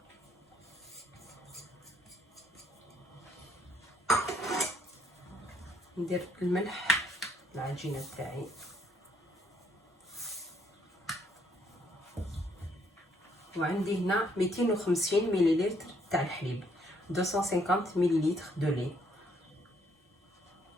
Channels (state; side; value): normal; both; correlation 0.68